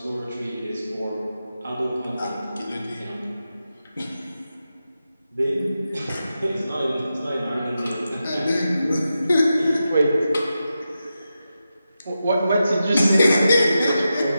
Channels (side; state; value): both; inverted; correlation -0.90